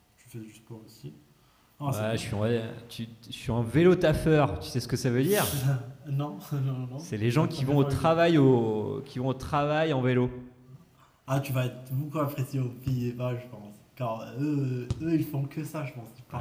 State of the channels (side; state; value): both; identical; correlation 1.00